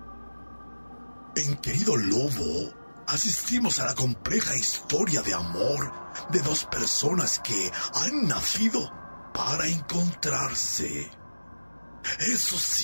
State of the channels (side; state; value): both; inverted; correlation -1.00